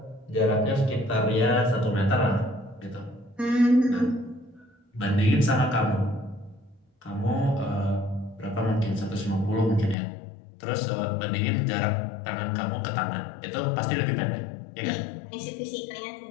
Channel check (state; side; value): drops out; right; at 10.0 s